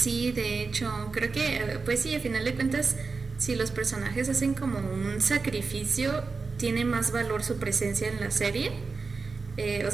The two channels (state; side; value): quieter; left; 4.4 dB